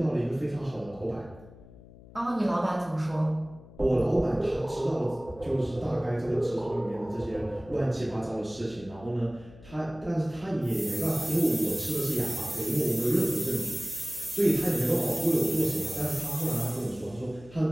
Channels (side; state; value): left; noise; hum, 20 dB below the sound